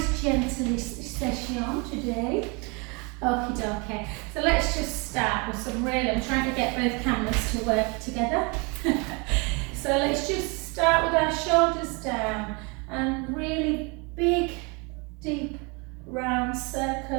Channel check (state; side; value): quieter; left; 30.5 dB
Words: gentle session today. Okie dokie. So let's just start with some really, I'm trying to get both cameras to work together. So let's just start with our shoulders down and really big, deep, round